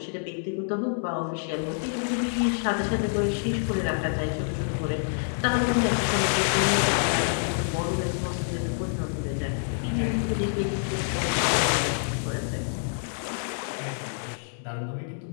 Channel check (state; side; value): silent; right; digital silence